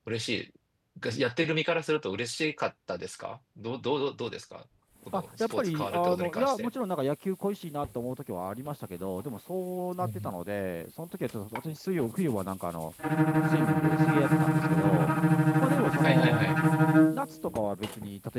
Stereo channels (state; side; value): identical; both; correlation 1.00